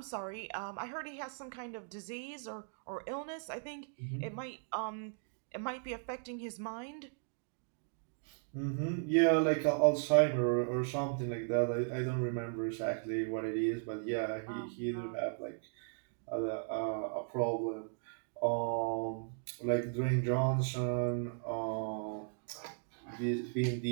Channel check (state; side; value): silent; left; digital silence